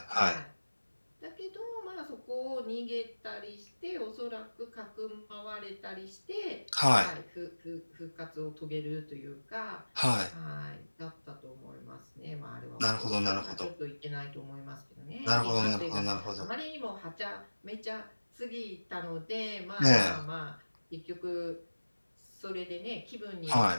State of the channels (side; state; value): both; inverted; correlation -1.00